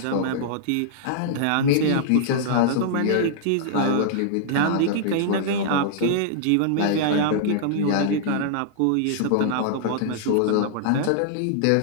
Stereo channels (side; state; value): both; different; correlation -0.01